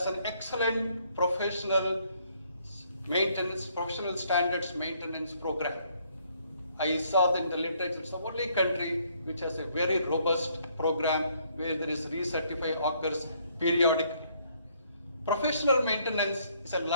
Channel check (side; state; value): both; inverted; correlation -0.67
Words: an excellent professional standards maintenance program. I saw that in the literature, it's the only country which has a very robust program where there is recertify occurs periodically. Professional maintenance is a